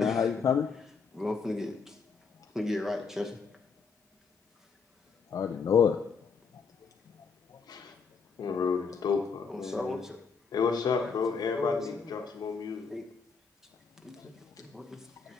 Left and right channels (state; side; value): quieter; right; 5.4 dB